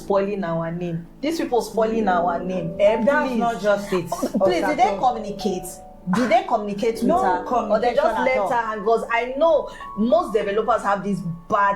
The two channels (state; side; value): identical; both; correlation 1.00